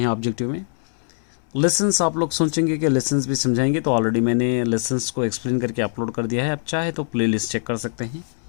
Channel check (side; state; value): right; silent; 64 dB below the other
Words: ऑब्जेक्टिव में। लेसन्स आप लोग सोचेंगे कि लेसन्स भी समझाएंगे, तो ऑलरेडी मैंने लेसन्स को एक्सप्लेन करके अपलोड कर दिया है। आप चाहे तो प्लेलिस्ट चेक कर सकते हैं।